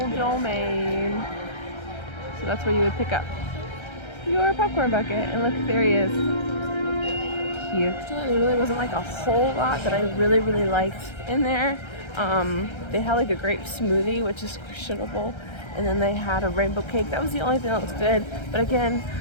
domain. So that's where you would pick up your popcorn bucket. And look, there he is. Cute. There really wasn't like a whole lot that I really, really liked in there. They had like a grape smoothie, which is questionable. And then they had a rainbow cake. That was the only thing that was good. But again,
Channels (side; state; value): right; late; 1.3 ms